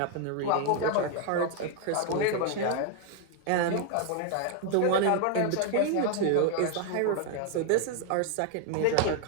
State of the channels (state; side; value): different; both; correlation 0.00